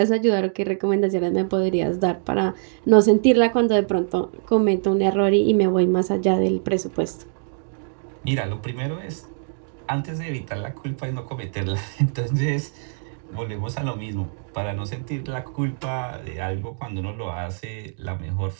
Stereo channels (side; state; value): left; silent; digital silence